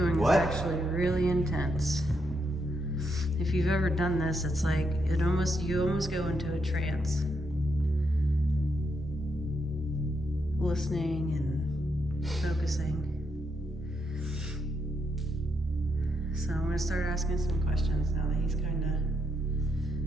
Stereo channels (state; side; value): normal; both; correlation 0.79